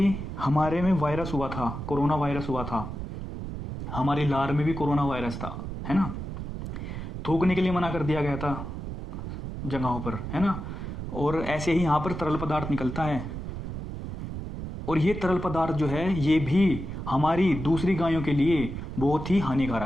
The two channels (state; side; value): noise; right; rumble, 7 dB below the sound